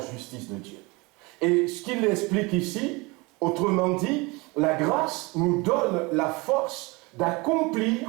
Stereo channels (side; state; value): left; quieter; 25.8 dB